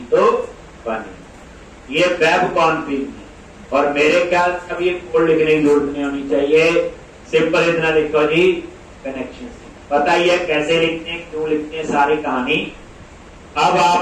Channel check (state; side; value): identical; both; correlation 1.00